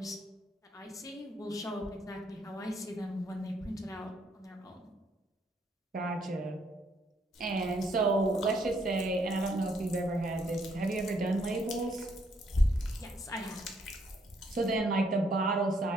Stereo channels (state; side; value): normal; both; correlation 0.71